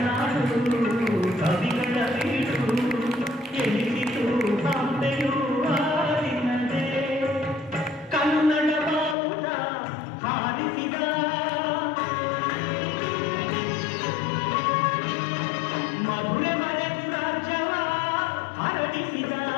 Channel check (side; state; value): right; drops out; at 9.2 s